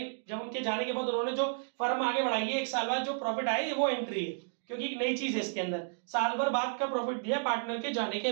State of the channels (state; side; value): silent; left; digital silence